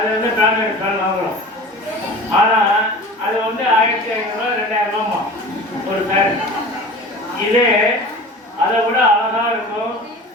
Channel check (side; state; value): both; normal; correlation 0.38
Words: வந்து பிராண்டட் ஃபேன் வாங்குறோம். ஆனால் அது வந்து 1500 2000 ரூபாமா ஒரு ஃபேன். இதே அதை விட அழகா இருக்கும்,